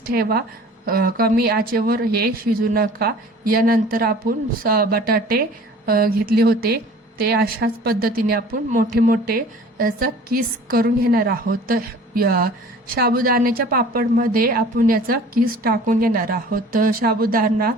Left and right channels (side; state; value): both; normal; correlation 0.46